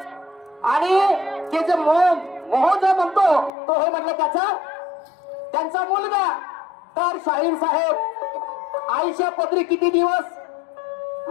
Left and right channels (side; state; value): right; drops out; at 3.5 s